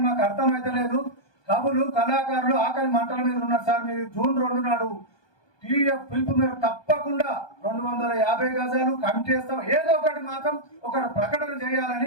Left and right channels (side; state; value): right; late; 1.2 ms